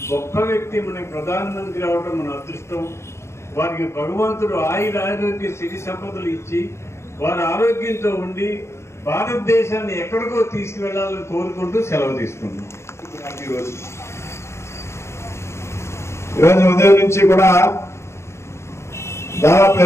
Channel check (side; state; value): right; late; 0.13 ms